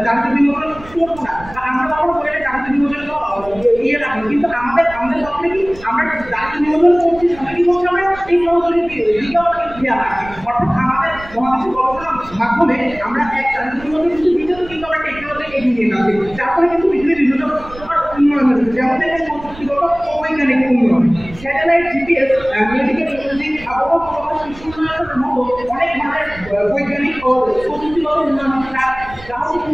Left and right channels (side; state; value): right; noise; rumble, 18 dB below the sound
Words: জাতীয় বিনোদন করবো না, আমরা কখনো বলে জাতীয় বিনোদন ইয়ে রাখবো, কিন্তু আমাদের পক্ষে কি আমরা জাতীয় বিনোদন করছি, সাথে কি করছি আমরা এই সহযোগী দিকেও খেয়াল রাখি। অর্থাৎ আমাদের মহাদেশের গবেষণার মাধ্যমে আমরা এক জাতীয় বিনোদন কিছু দিকেও কিন্তু আমরা টেকনোলজি এগিয়ে নিয়ে যাচ্ছি, যার ফলে কিন্তু পৃথিবীর বিভিন্ন উন্নয়ন হচ্ছে, যেমন দেখেন প্রযুক্তিগত ও বৈজ্ঞানিক উন্নয়ন, স্যাটেলাইট, জিপিএস, মেডিকেল ইমেজিং, আবহাওয়া পূর্বাভাস, কৃষি উন্নয়নের মতো অনেক ধরনের বৈজ্ঞানিক ও প্রযুক্তিগত উন্নয়ন যা হচ্ছে